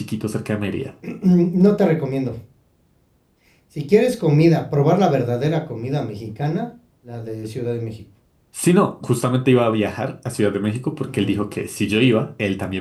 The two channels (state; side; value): identical; both; correlation 1.00